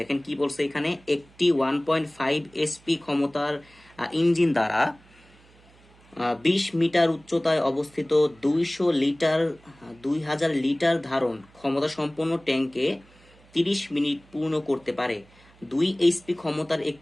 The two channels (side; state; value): right; noise; hum, 28 dB below the sound